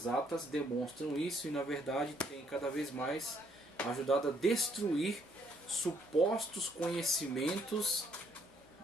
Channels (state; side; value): normal; both; correlation 0.69